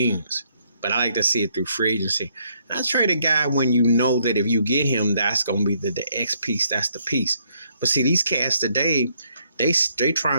But I like to see it through free agency. And I trade a guy when you know that if you get him, that's going to be the X piece. That's the piece. But see, these cats today, they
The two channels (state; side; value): inverted; both; correlation -0.71